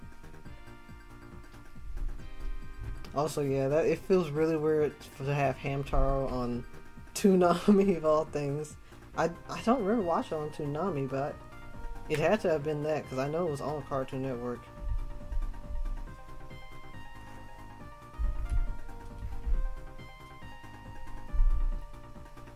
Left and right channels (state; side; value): identical; both; correlation 1.00